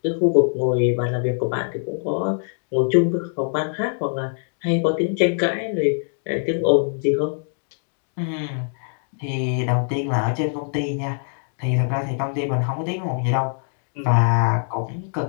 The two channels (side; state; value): right; silent; 63 dB below the other